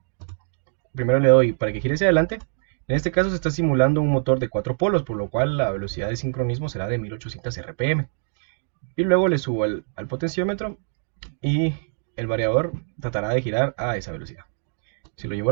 primero le doy para que gire hacia adelante. En este caso se está simulando un motor de 4 polos, por lo cual la velocidad de sincronismo será de 1800 RPM. Y luego le subo al potenciómetro y el variador tratará de girar a esa velocidad. Si lo llevo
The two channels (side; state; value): left; silent; digital silence